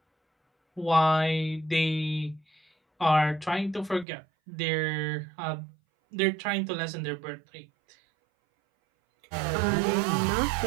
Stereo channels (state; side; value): drops out; left; at 4.0 s